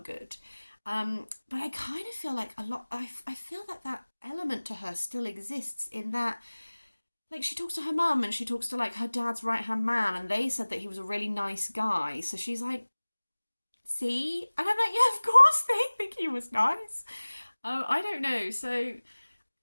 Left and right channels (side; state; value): both; inverted; correlation -1.00